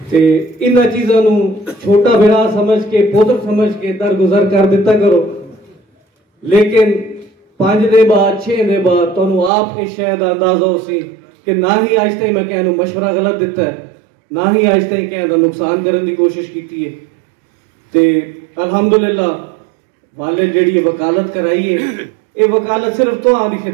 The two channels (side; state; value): left; drops out; at 9.5 s